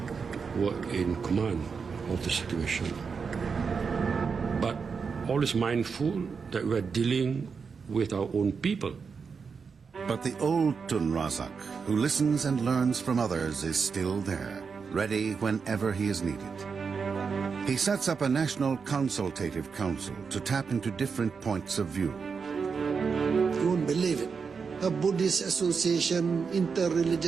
were in command of the situation. But always mindful that we're dealing with our own people. But the old Tun Razak, who listens and learns from others, is still there, ready whenever he is needed. He sets up a national consultative council to tap into different points of view. You won't believe it. A Buddhist association,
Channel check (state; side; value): quieter; left; 5.6 dB